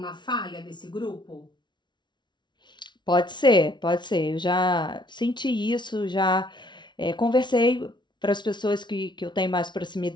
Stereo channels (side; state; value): right; late; 0.22 ms